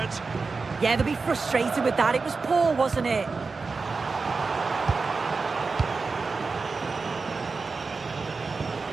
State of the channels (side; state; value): left; quieter; 4.3 dB